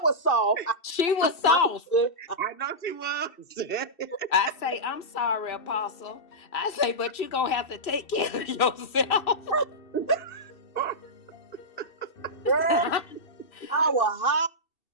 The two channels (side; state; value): right; late; 2.7 ms